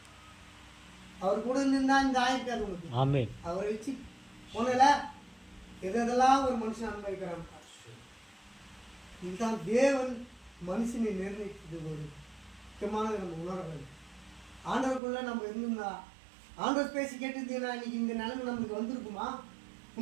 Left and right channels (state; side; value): drops out; left; at 15.0 s